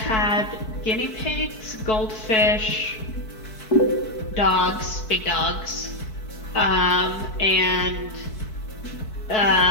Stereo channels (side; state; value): right; late; 4.6 ms